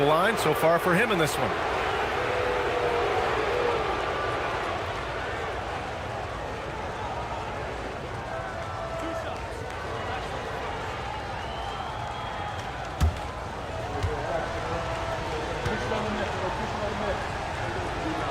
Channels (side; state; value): both; identical; correlation 1.00